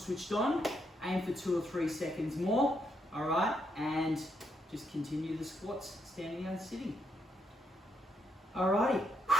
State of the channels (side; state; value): both; normal; correlation 0.77